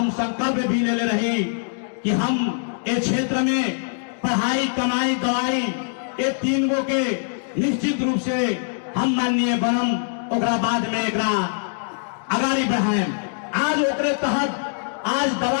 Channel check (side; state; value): right; silent; digital silence